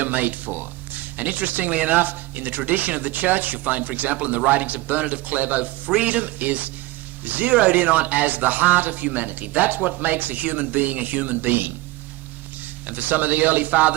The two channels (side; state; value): left; quieter; 19.1 dB